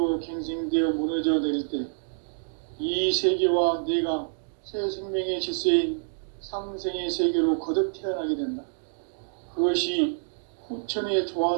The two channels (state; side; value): silent; left; digital silence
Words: 갱생되어 무너져 내릴 때 이 세계와 내가 새 생명의 질서인 상생의 세계로 거듭 태어나게 된다. 그것이 후천의